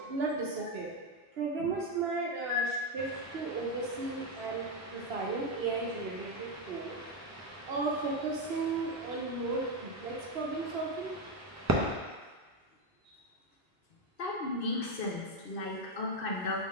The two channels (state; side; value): normal; both; correlation 0.08